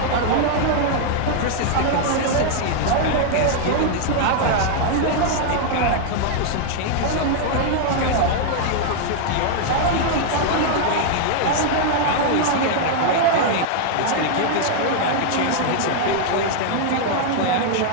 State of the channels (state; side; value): different; both; correlation 0.00